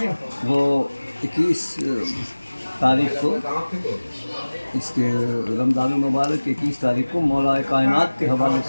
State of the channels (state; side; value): inverted; both; correlation -1.00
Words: वो 21 तारीख को, इसके रमज़ान मुबारक 21 तारीख को मौला कायनात के हवाले